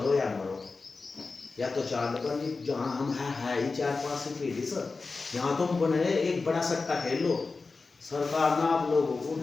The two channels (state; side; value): quieter; right; 4.1 dB